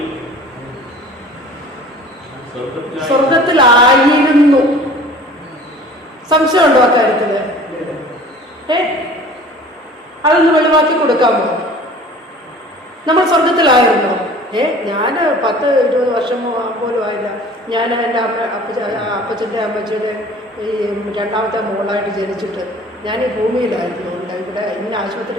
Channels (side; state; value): both; normal; correlation 0.46